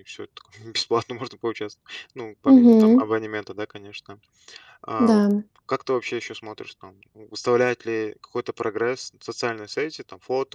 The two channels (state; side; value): identical; both; correlation 1.00